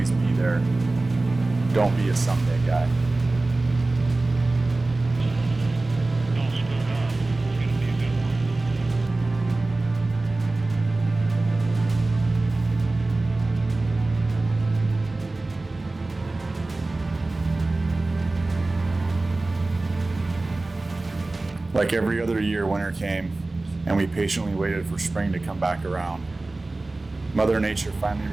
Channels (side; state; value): left; quieter; 3.1 dB